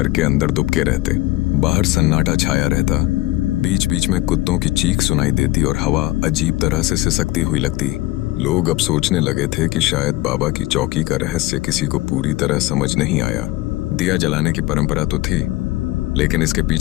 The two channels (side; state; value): right; quieter; 17.8 dB